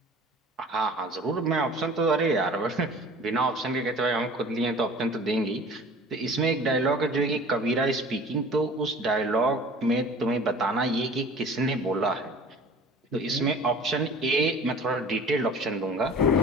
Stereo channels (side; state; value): both; normal; correlation 0.44